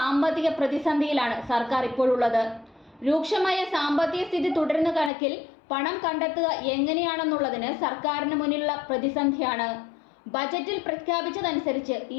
പ്രതിസന്ധിയിലാണ് സർക്കാർ ഇപ്പോഴുള്ളത്. രൂക്ഷമായ സാമ്പത്തിക സ്ഥിതി തുടരുന്ന കണക്കിൽ പണം കണ്ടെത്തുക എങ്ങനെയാണെന്നുള്ളതിന് സർക്കാരിന് മുന്നിലുള്ള പ്രതിസന്ധിയാണ്. ബജറ്റിൽ പ്രഖ്യാപിച്ചതനുസരിച്ച്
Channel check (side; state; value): right; drops out; at 5.1 s